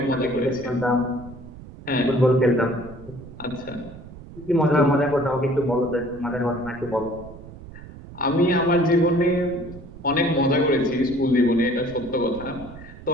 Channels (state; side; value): noise; right; rumble, 16 dB below the sound